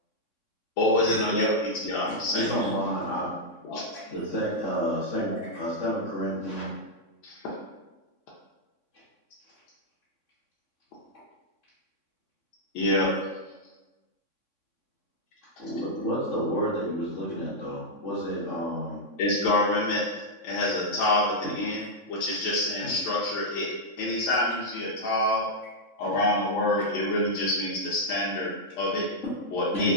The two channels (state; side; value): late; right; 3.6 ms